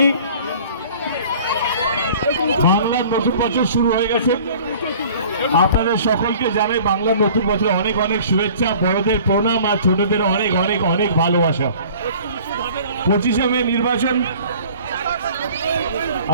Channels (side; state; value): both; inverted; correlation -0.48